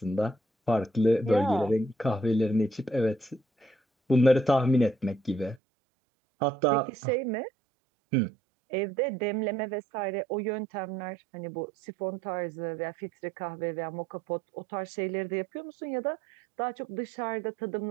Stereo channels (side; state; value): left; drops out; at 5.6 s